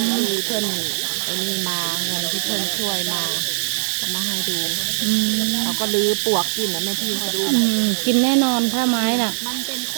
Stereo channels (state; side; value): silent; left; digital silence